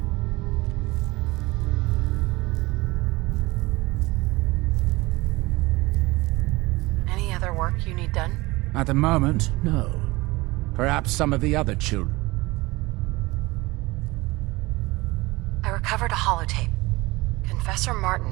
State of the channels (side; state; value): left; quieter; 21.7 dB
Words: Any other work you need done? At the moment, no. Perhaps some of the other children. I recovered a holotape. Confessor